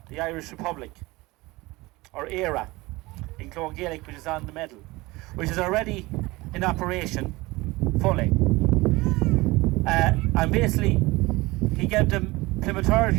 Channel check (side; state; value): left; quieter; 21.6 dB